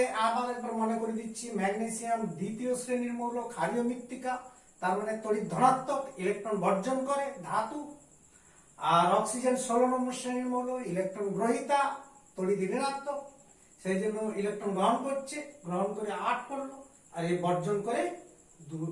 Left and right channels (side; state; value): both; identical; correlation 1.00